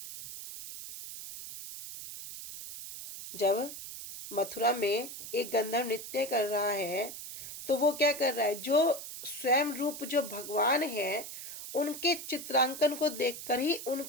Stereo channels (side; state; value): right; noise; hiss, 10 dB below the sound